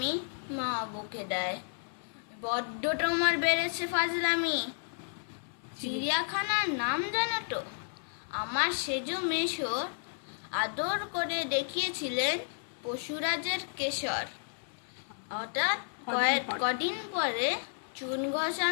মা বকে দেয়, বড্ড তোমার বেড়েছে ফাজলামি। চিড়িয়াখানার নাম জানো তো? আমার সেজ মেশর আদর করে দেখিয়েছিলেন পশুরাজের কেশর। হঠাৎ কদিন পরে চুন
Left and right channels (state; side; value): silent; right; 56 dB below the other